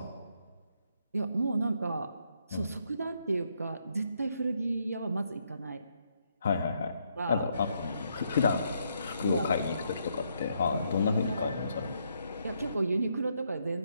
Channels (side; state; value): both; inverted; correlation -0.75